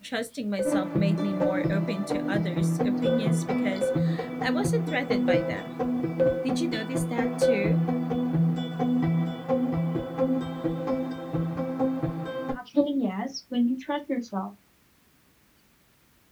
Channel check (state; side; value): identical; both; correlation 1.00